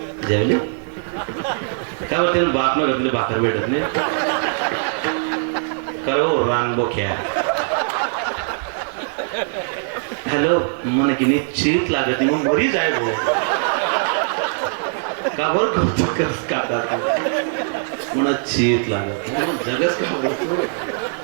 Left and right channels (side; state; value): left; silent; digital silence